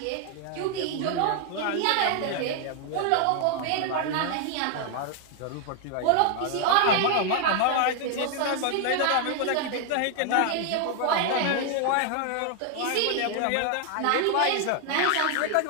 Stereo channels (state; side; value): different; both; correlation 0.00